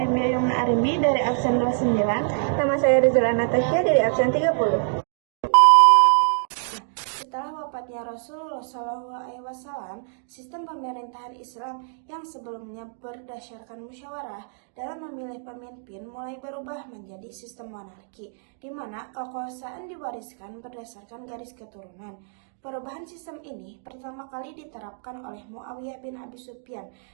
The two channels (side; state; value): left; silent; digital silence